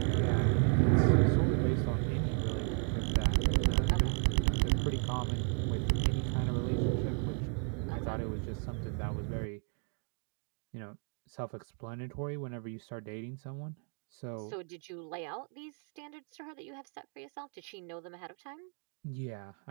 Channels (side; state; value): left; quieter; 39.8 dB